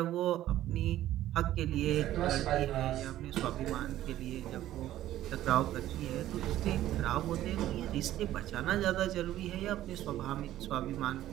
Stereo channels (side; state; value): left; quieter; 13.5 dB